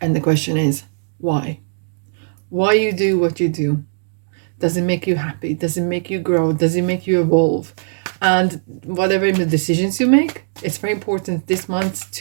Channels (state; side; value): silent; left; digital silence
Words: the question is why you do what you do. Does it make you happy? Does it make you grow? Does it make you evolve? And whatever the decisions you make, it's very important this month